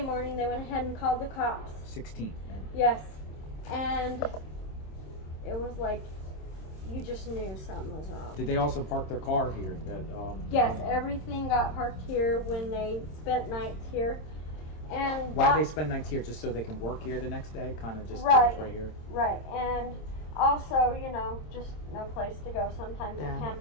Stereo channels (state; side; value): late; right; 26 ms